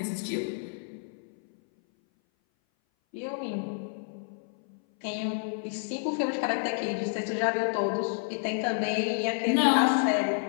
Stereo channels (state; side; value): silent; right; 57 dB below the other